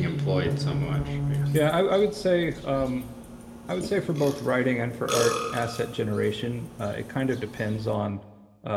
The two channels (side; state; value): both; identical; correlation 1.00